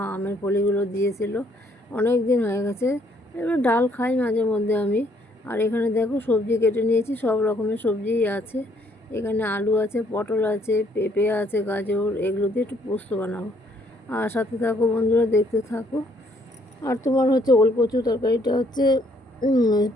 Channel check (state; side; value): normal; both; correlation 0.67